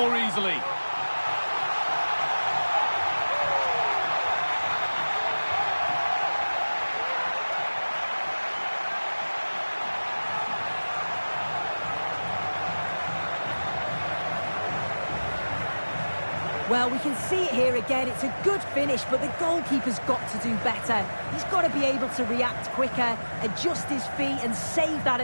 easily. Well, we can see it here again. It's a good finish, but the goalkeeper's got to do better. He's got to be able to react quicker, adjust his feet and save that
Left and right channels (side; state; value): both; inverted; correlation -1.00